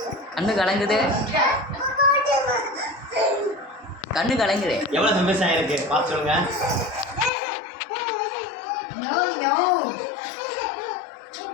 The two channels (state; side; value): drops out; right; at 7.3 s